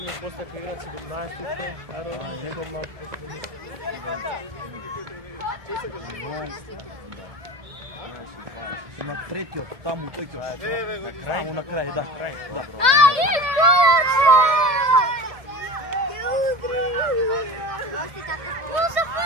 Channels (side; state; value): left; late; 1.7 ms